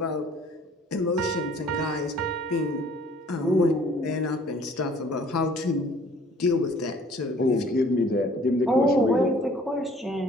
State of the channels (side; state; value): both; normal; correlation 0.55